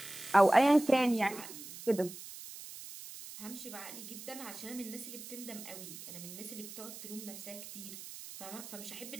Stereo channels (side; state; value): right; noise; hiss, 12 dB below the sound